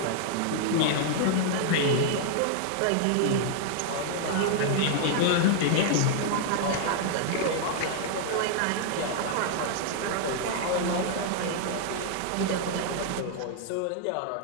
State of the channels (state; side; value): different; both; correlation 0.00